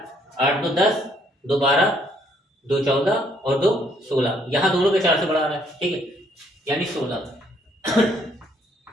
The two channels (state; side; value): normal; both; correlation 0.67